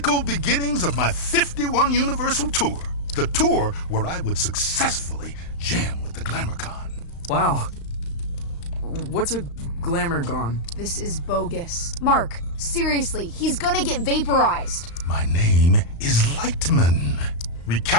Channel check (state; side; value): late; right; 35 ms